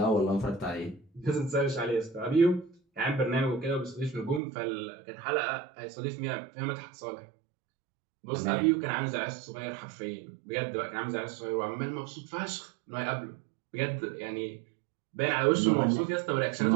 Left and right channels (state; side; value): drops out; left; at 4.4 s